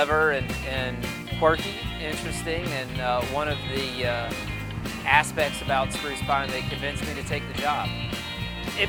and quirky, interesting, and one of the aspects about Spruce Pine that convinced me to take the job. It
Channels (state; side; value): identical; both; correlation 1.00